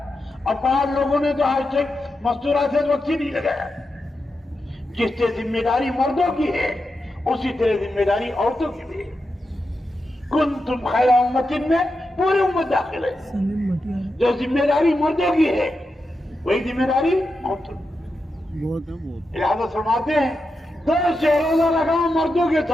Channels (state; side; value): normal; both; correlation 0.88